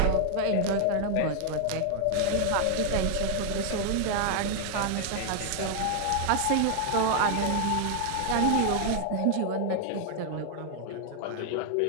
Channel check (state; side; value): different; both; correlation 0.00